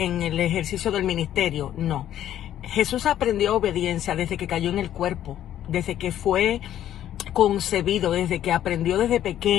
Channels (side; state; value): right; quieter; 11.5 dB